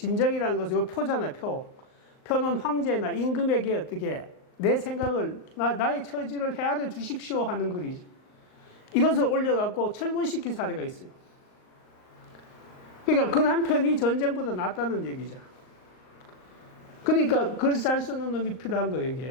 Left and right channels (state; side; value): late; right; 38 ms